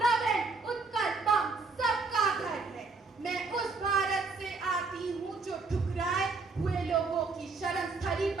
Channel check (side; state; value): left; quieter; 4.0 dB